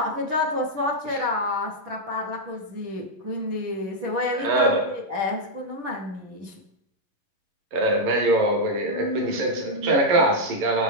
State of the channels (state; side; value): late; left; 11 ms